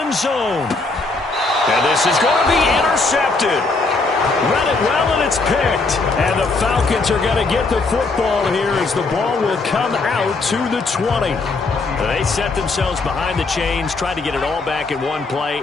zone. And this is going to be intercepted. Read it well, and it's picked. And the Falcons are going to get the football here as the ball will come out to the 20. They set themselves behind the chains, tried to get it all back in one play,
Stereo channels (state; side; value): quieter; right; 3.6 dB